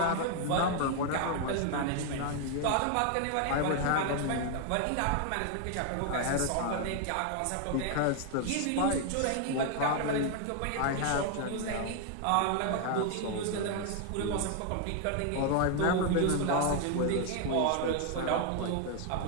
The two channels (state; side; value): different; both; correlation 0.00